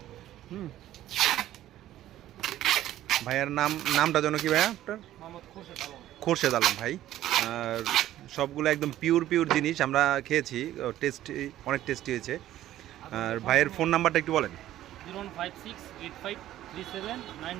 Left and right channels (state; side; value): quieter; left; 13.4 dB